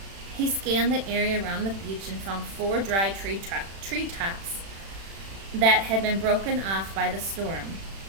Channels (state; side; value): late; left; 36 ms